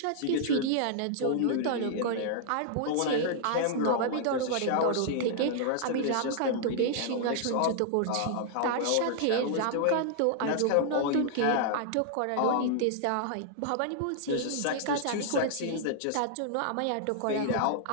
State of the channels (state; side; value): different; both; correlation -0.01